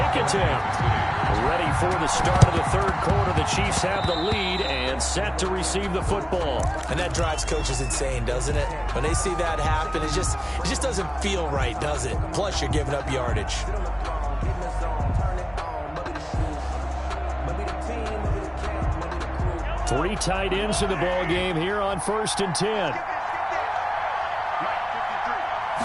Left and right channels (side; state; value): both; identical; correlation 1.00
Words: attempt. Ready for the start of the third quarter. The Chiefs have the lead and set to receive the football. And that drives coaches insane, doesn't it? When they see that happen, it just doesn't feel right, does it? Plus, you're giving up yardage. Three tight ends in the ball game here on 1st and 10.